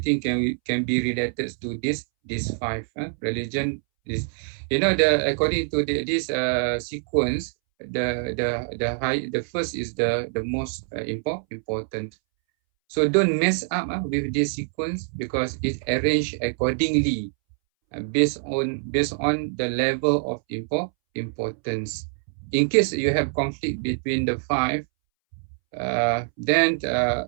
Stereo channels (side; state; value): left; silent; 62 dB below the other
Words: can be related to these 5. Religion is, you know, according to this sequence, the first is the most important. So don't mess up with this sequence, because it's arranged accordingly based on the level of importance. In case you have conflict between the 5, then